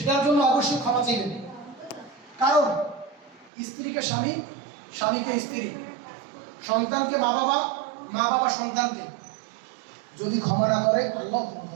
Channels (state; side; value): drops out; left; at 3.5 s